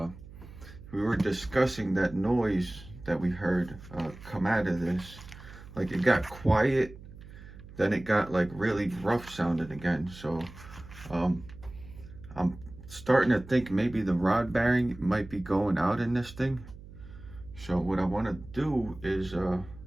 we were discussing that noise that we heard come out of this. Like, it got quiet, then it got like really rough sounding again. So I'm starting to think maybe the rod bearing might be going out in this thing. So what I want to do is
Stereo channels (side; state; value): right; noise; hum, 17 dB below the sound